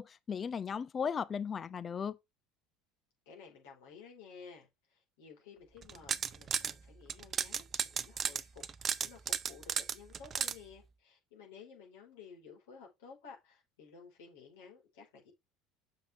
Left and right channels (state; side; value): normal; both; correlation 0.72